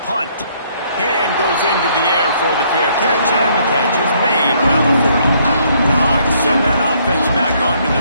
punt. Hand goes into the air for the fair catch, and the catch is made around the 40. The Hogs send that offense back onto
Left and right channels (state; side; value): inverted; both; correlation -0.67